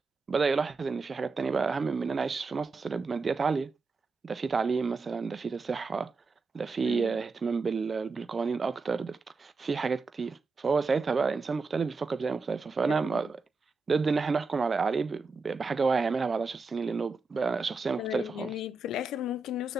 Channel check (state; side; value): quieter; left; 3.9 dB